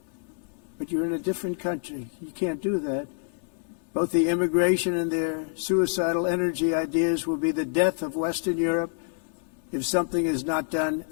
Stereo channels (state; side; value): silent; right; 60 dB below the other